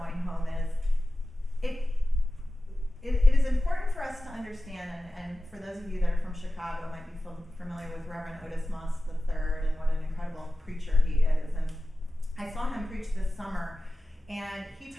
home is, it is important for us to understand, and for those of you that are from Chicago might be familiar with Reverend Otis Moss III and what an incredible preacher he is. And I saw him preach this summer, and he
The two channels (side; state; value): both; normal; correlation 0.94